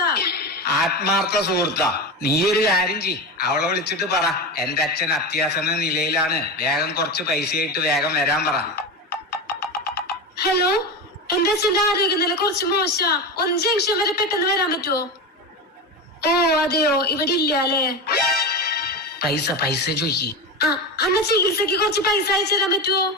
ആത്മാർത്ഥ സുഹൃത്താ? നീ ഒരു കാര്യം ചെയ്, അവളെ വിളിച്ചിട്ട് പറ, എന്റെ അച്ഛൻ അത്യാസന്ന നിലയിലാണ്, വേഗം കുറച്ച് പൈസയായിട്ട് വേഗം വരാൻ പറ. ഹലോ, എന്റെ അച്ഛന്റെ ആരോഗ്യനില കുറച്ച് മോശം. 1 ജംഗ്ഷൻ വരെ പെട്ടെന്ന് വരാൻ പറ്റുമോ? ഓ അതെയോ, ഇവിടെ ഇല്ല അല്ലേ? പൈസ ചോദിക്ക്. അന്ന ചികിത്സക്ക് കുറച്ച് പൈസ അയച്ചു തരാൻ പറ്റുമോ?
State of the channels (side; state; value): both; normal; correlation 0.21